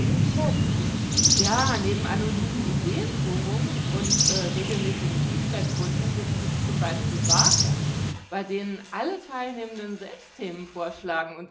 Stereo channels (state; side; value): identical; both; correlation 1.00